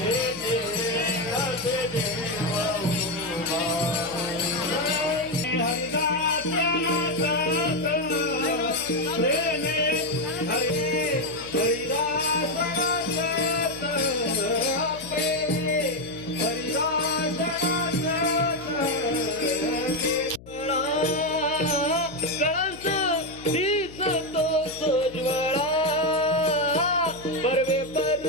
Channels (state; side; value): noise; left; hum, 19 dB below the sound